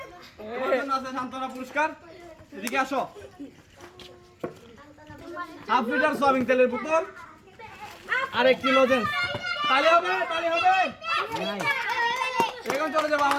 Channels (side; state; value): both; identical; correlation 1.00